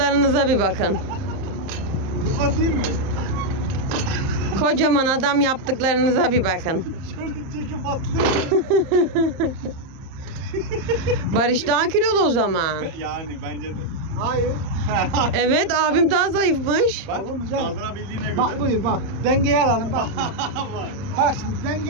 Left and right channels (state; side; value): late; left; 30 ms